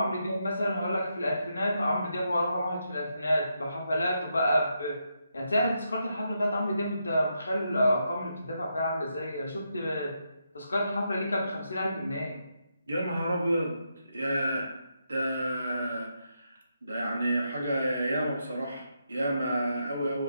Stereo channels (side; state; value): both; inverted; correlation -0.82